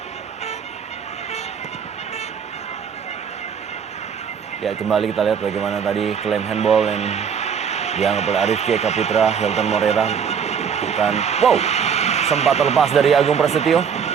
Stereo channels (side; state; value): left; quieter; 7.1 dB